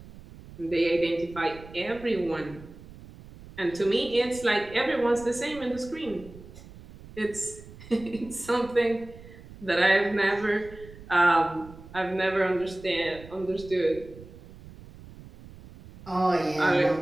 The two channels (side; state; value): right; noise; rumble, 18 dB below the sound